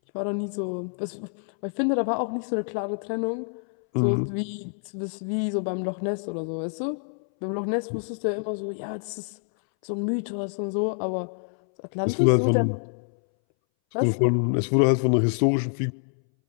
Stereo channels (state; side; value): silent; right; 60 dB below the other